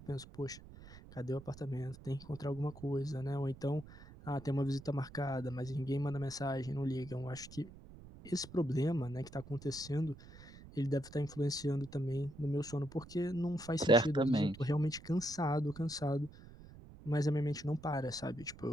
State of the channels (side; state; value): right; noise; rumble, 17 dB below the sound